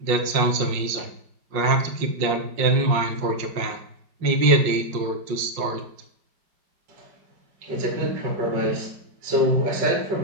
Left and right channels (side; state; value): left; late; 5.6 ms